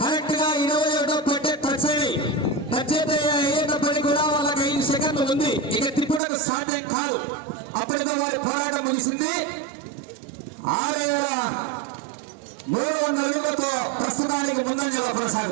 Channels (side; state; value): left; drops out; at 6.2 s